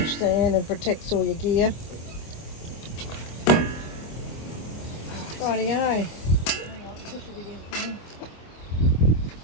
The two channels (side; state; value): right; late; 25 ms